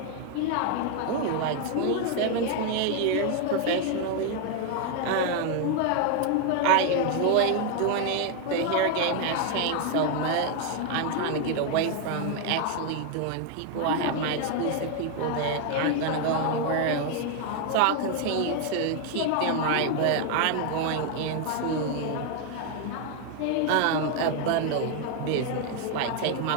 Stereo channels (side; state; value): both; different; correlation 0.01